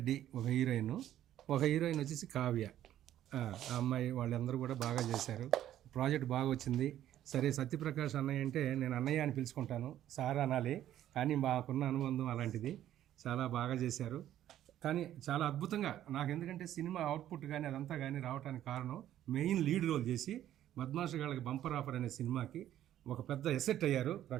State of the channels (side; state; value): left; quieter; 12.0 dB